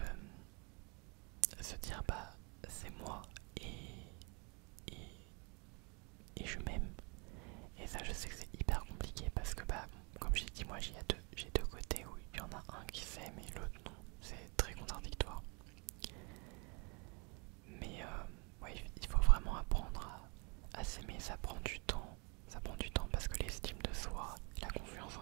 se dire bah c'est moi et, et je m'aime. Et ça je sais que c'est hyper compliqué parce que bah comme j'ai dit, moi j'ai deux côtés où il y en a un qui s'aime et l'autre non, c'est très contradictoire. Mais ouais, il faut vraiment apprendre à s'aimer, ça prend du temps. Ça prend du temps parce que l'estime de soi, la confiance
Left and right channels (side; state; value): left; quieter; 31.9 dB